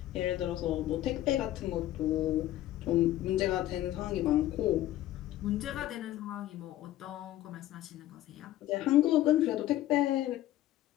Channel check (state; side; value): quieter; right; 14.1 dB